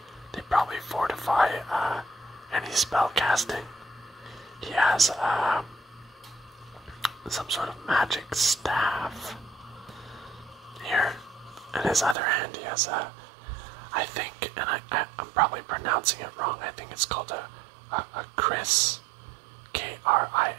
They probably fortify any spell casting. He has some sort of magic staff here. In his other hand he has I think, and I'm probably pronouncing it wrong, I think it's called a Kriss,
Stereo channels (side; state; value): left; drops out; at 12.2 s